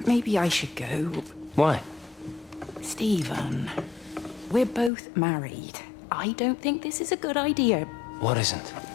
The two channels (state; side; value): drops out; right; at 4.9 s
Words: maybe I should go. Why? Stephen, we're both married. I don't think this is a good idea. What isn't?